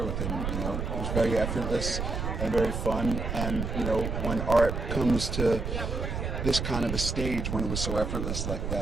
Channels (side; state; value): right; noise; rumble, 3 dB below the sound